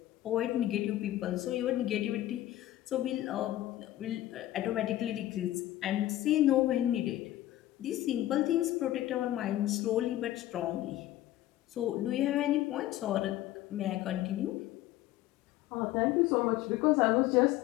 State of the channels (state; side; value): quieter; right; 14.6 dB